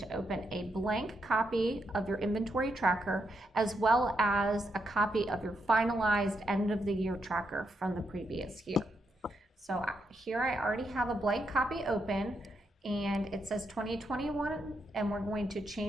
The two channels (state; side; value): normal; both; correlation 0.81